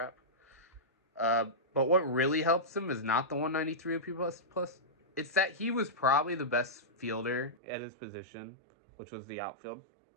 But what really helps him is not the 193 OPS plus. It's that he was probably the best fielder at his position, which was the outfield,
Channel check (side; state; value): left; drops out; at 7.6 s